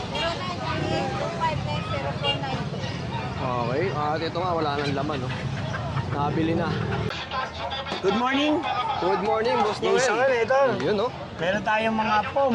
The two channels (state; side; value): identical; both; correlation 1.00